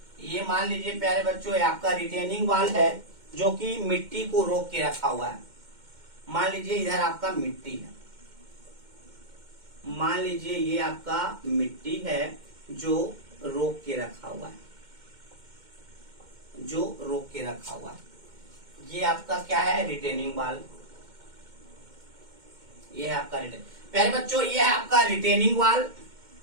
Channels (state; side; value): late; left; 2.1 ms